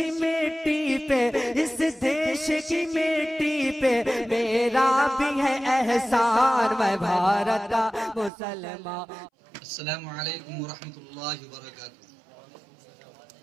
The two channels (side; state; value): left; drops out; at 8.3 s